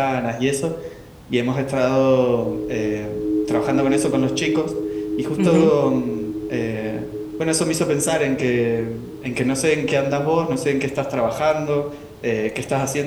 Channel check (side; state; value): both; identical; correlation 1.00